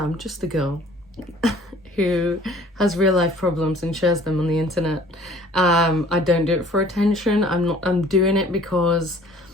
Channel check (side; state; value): both; normal; correlation 0.52